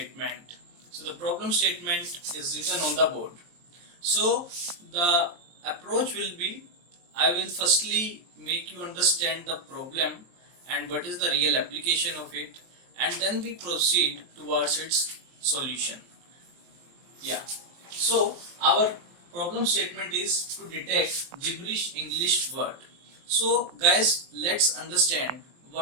So the problem statement is written on the board. So the approach will be, I will firstly make you understand the problem and what is the real application of it, and then we proceed towards its solution. Yeah. So our problem statement is to detect gibberish English word. So guys, let's understand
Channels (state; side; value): late; left; 23 ms